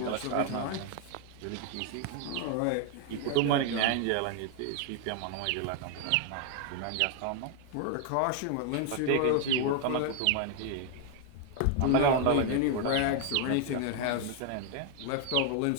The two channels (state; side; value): different; both; correlation 0.01